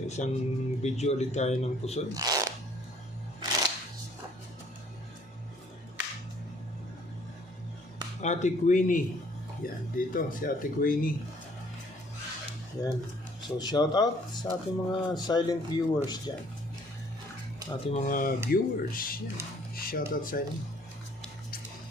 isang video ulit tayo ng pusod. Ate Queenie. Yan, dito si Ate Queenie. Yan. So shout out sa ating mga silent viewers dyan. Ating mga viewers. Yan. Shout out sa inyo.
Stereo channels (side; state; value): both; normal; correlation 0.60